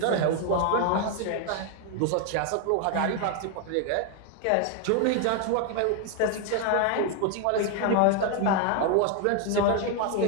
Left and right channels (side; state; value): both; different; correlation 0.01